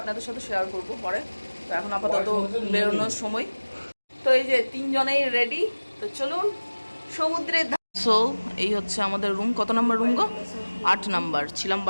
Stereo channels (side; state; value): both; inverted; correlation -1.00